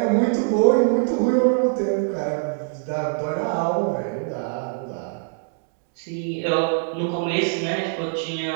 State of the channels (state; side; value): silent; left; digital silence